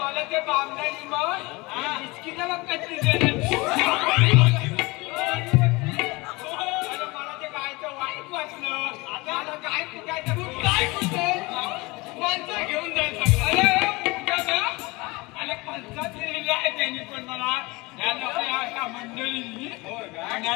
ते बामणारी मग बिस्किट मग कशी देणार मला ते गायचं वाईट वाटलं आता मला गाय कुठायचं काय कुठे माणसं घेऊन जायचं अरे पंचायत लिहिलेलं आहे त्यांनी पण मला या अशा मंडळींनी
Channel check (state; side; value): quieter; right; 23.8 dB